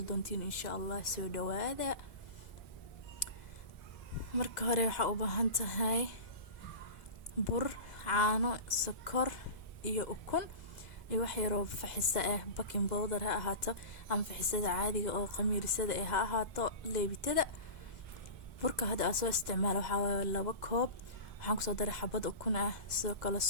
دونتين إن شاء الله سو دوادا marka hore waxaa u baahan tahay bur caano sokor iyo ukun iyo wax yar oo faxisa ah baking powder ha ahaato ama faxisada caadiga oo qamiirsada ha ahaato leebitada burka hadda aan soo isticmaalo waxaa waaye 2 koob waxaan kusoo daray xabad ukun ah sidoo kale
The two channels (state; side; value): late; right; 2.0 ms